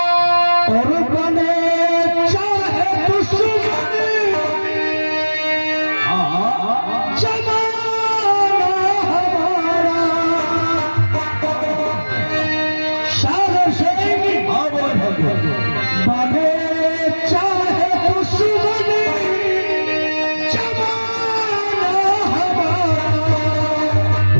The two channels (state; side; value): inverted; both; correlation -1.00